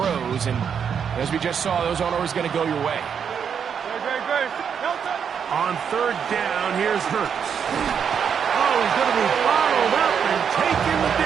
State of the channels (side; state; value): left; quieter; 7.4 dB